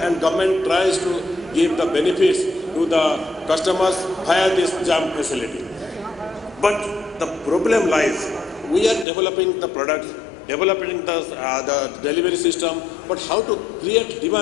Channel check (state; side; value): drops out; right; at 9.1 s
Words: government tries to give the benefits to the customers via this JAM facility. But the problem lies, we are developing the products, developing the delivery system, but how to create